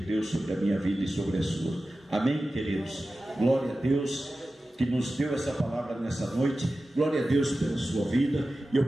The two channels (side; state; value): both; normal; correlation 0.95